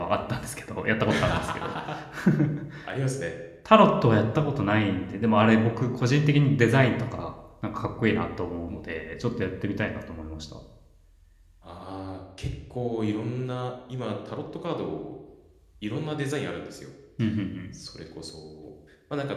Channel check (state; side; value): identical; both; correlation 1.00